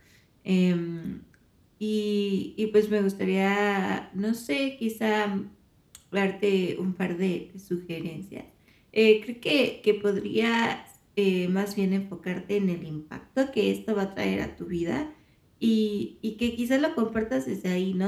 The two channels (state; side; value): identical; both; correlation 1.00